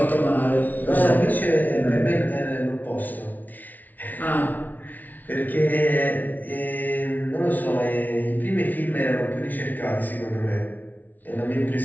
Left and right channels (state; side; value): late; right; 0.079 ms